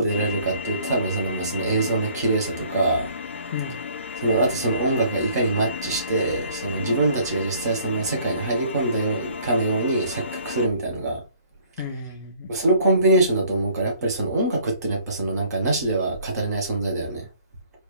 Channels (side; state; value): both; inverted; correlation -0.58